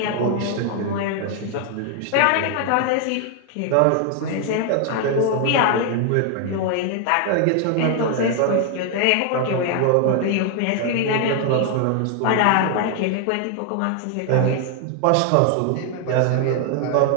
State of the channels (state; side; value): different; both; correlation 0.00